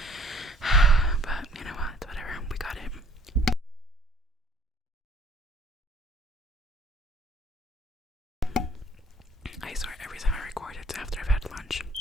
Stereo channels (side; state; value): both; normal; correlation 0.57